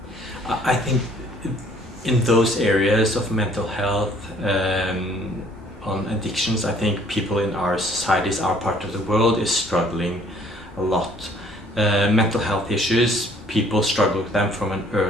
I think in those areas of mental health, on addictions, I think people in our societies, our part of the world, is struggling a lot. mental health issues, people struggle with them from an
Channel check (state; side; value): normal; both; correlation 0.59